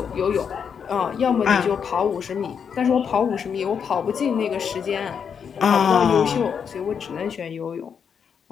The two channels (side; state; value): right; quieter; 7.0 dB